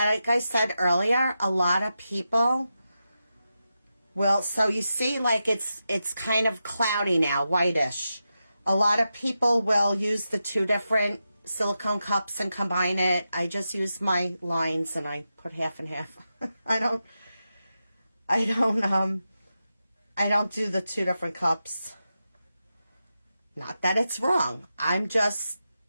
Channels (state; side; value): inverted; both; correlation -0.90